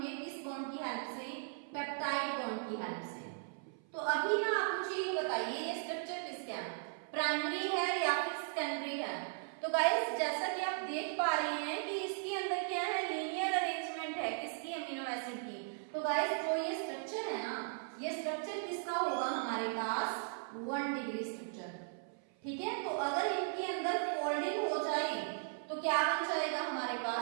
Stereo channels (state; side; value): silent; left; 53 dB below the other